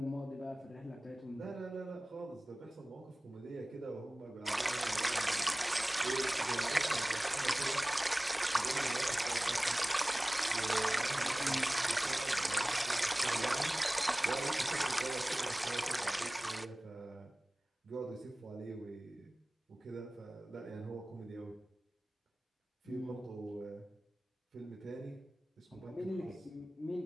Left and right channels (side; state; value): both; normal; correlation 0.98